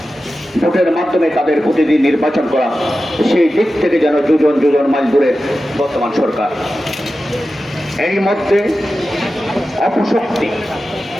ভোটের মাধ্যমে তাদের প্রতিনিধি নির্বাচন করা, সেই দিক থেকে যেন যোজন মাইল দূরে বর্তমান সরকার। এই মধ্যে অপশক্তি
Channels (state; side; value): normal; both; correlation 0.93